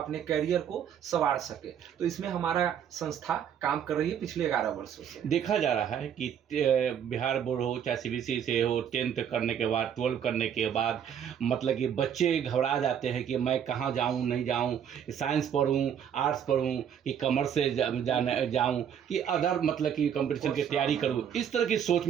कैरियर को संवार सके। तो इसमें हमारा संस्था काम कर रही है पिछले 11 वर्षों से। देखा जा रहा है कि बिहार बोर्ड हो चाहे CBSE से हो, 10th करने के बाद, 12 करने के बाद मतलब कि बच्चे घबरा जाते हैं कि मैं कहाँ जाऊँ, नहीं जाऊँ, साइंस पढ़ूँ, आर्ट्स पढ़ूँ कि कॉमर्स से जाऊं कि अदर मतलब कि कंपटीशन की तैयारी करूं। इस तरह की सोच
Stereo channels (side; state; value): left; quieter; 8.7 dB